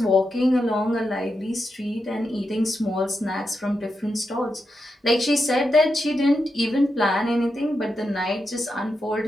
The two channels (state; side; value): normal; both; correlation 0.86